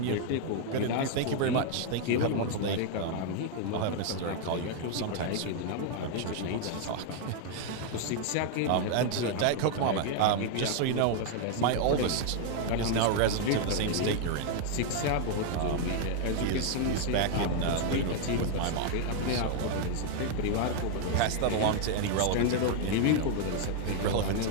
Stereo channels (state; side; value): different; both; correlation 0.00